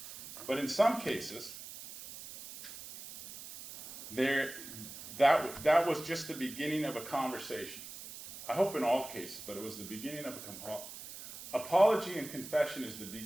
But in some cases, that was just the beginning of a conversation. I hope in all cases, but it was the beginning of apology and confession is the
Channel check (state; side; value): noise; right; hiss, 13 dB below the sound